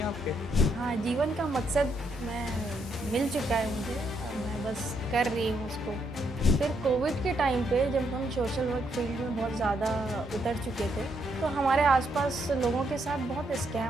आपके? हाँ, जीवन का मकसद मैं मिल चुका है मुझे, अब मैं बस कर रही हूँ उसको। फिर कोविड के टाइम पे जब हम सोशल वर्क फील्ड में बहुत ज़्यादा उतर चुके थे, तो हमारे आसपास लोगों के साथ बहुत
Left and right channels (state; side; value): normal; both; correlation 0.77